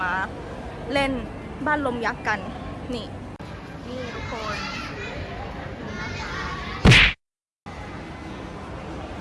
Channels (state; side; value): identical; both; correlation 1.00